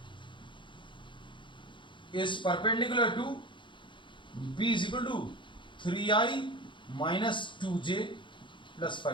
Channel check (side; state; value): right; late; 0.23 ms